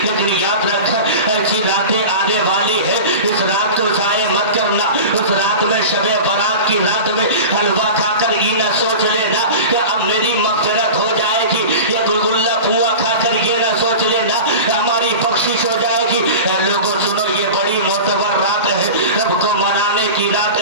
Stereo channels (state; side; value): inverted; both; correlation -0.32